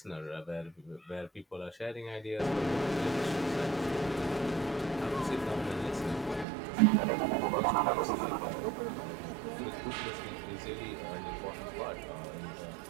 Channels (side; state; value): left; drops out; at 6.5 s